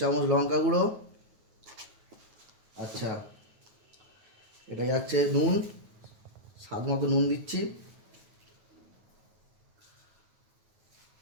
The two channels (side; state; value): left; late; 9.4 ms